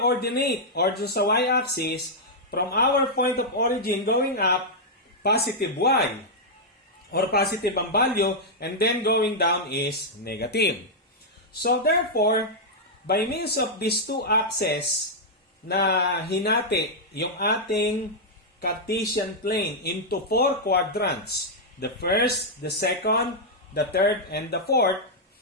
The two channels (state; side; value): normal; both; correlation -0.05